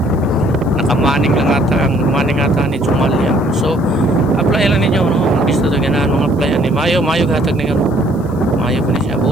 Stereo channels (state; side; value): noise; right; hiss, 30 dB below the sound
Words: nakamaning lang ata ni Jumalia. So apply lang ninyo, no, gusto to ganahan mga applyan ni mayo hatag ni mayo ko ni siya